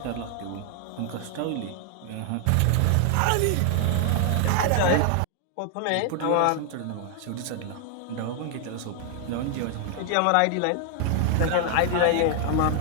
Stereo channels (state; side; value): different; both; correlation 0.00